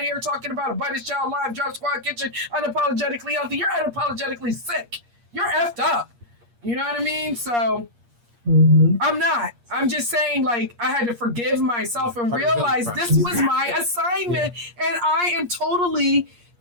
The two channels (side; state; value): left; late; 8.5 ms